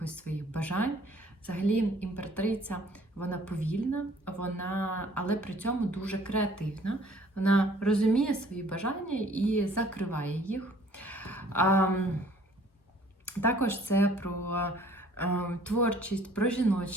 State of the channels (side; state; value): both; normal; correlation 0.56